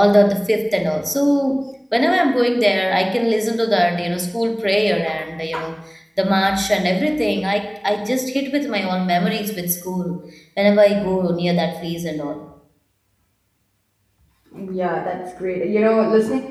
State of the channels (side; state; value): both; identical; correlation 1.00